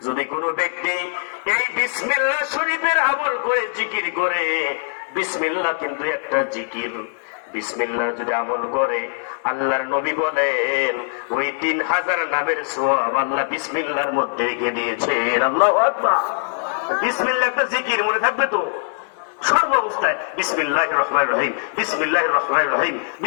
যদি কোনো ব্যক্তি এই বিসমিল্লাহ শরীফের আমল করে, জিকির করে, বিসমিল্লাহ কিন্তু একটা জিকির, বিসমিল্লাহ যদি আমল করে, আল্লাহর নবী বলেন ওই 3000 নামের সওয়াব আল্লাহ বিসমিল্লাহর মধ্যে রেখে দিয়েছেন। আল্লাহু আকবার। বিসমিল্লাহ একটা জিকির, মনে থাকবে তো সর্ব অবস্থায় বিসমিল্লাহির রহমানির রহিম, বিসমিল্লাহির রহমানির রহিম,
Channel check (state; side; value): silent; right; 65 dB below the other